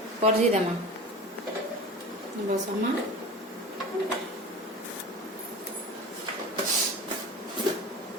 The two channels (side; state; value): both; normal; correlation 0.33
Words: परजी देमा। बसमा